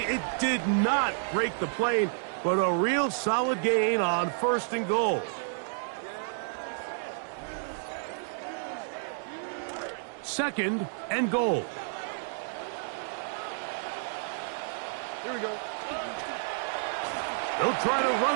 it did not break the plane, but a real solid gain on first and goal. Second and goal. Here we go. They'll try to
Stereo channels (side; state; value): left; silent; digital silence